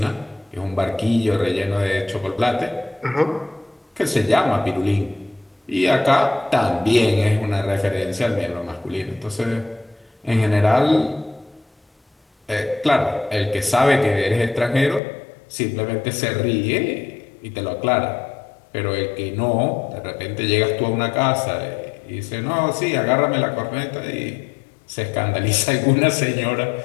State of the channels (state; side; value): drops out; right; at 15.0 s